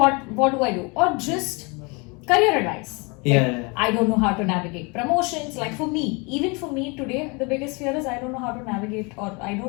do I do? Or just career advice. I don't know how to navigate promotions. Like for me, even for me today, the biggest fear is I don't know how to navigate, or I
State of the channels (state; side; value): quieter; right; 29.6 dB